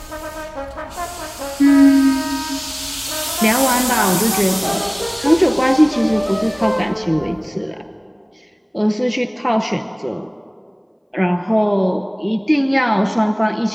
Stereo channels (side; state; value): both; identical; correlation 1.00